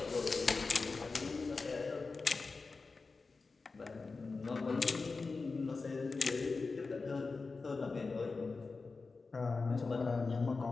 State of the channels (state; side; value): quieter; right; 4.1 dB